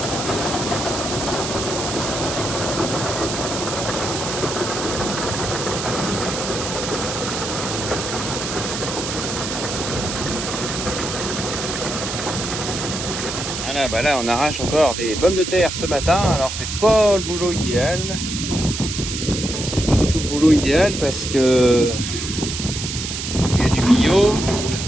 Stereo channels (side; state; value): right; noise; hiss, 5 dB below the sound